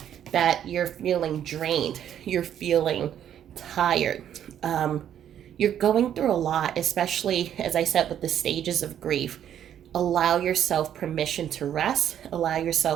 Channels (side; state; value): left; quieter; 10.0 dB